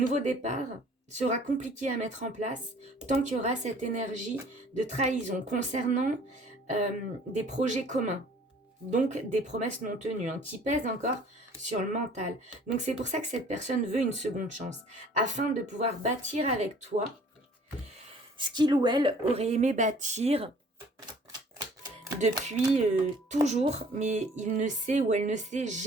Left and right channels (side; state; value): both; normal; correlation 0.53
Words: départ sera compliqué à mettre en place tant qu'il y aura cette énergie de trahison concernant des projets communs, donc des promesses non tenues, hein, qui pèsent encore sur le mental. Donc c'est pour ça que cette personne veut une seconde chance, afin de pouvoir bâtir avec toi ce qu'il ou elle aurait aimé bâtir depuis toujours, mais il ne sait ou elle ne sait